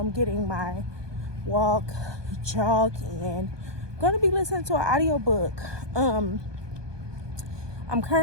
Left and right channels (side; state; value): left; late; 1.2 ms